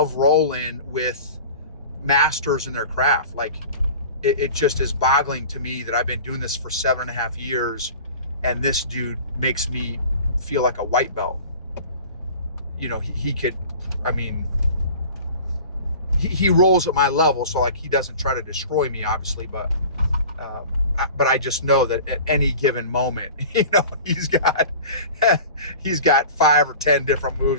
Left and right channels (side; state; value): both; inverted; correlation -0.39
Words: rolling with masters in their craft. Like, it just is boggling to me that I've been doing this for 7.5 years, and this dude makes me feel like a white belt. He could, I mean, he rolls at my level, so like he doesn't try to destroy me, obviously, but I just know that at any given moment, he's got 5 or 10 different